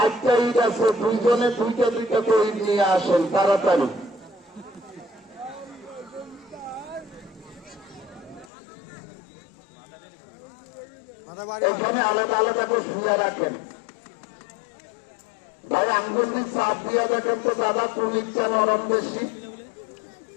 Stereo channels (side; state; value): right; drops out; at 8.5 s